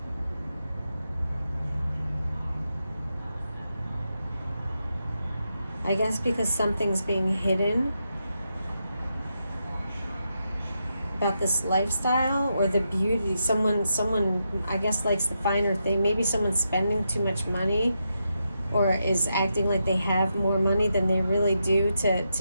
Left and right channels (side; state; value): both; inverted; correlation -0.84